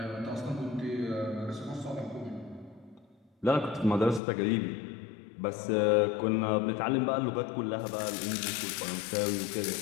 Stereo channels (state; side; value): drops out; right; at 4.2 s